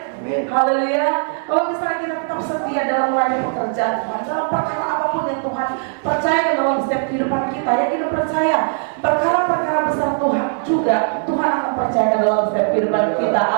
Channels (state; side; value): silent; left; 58 dB below the other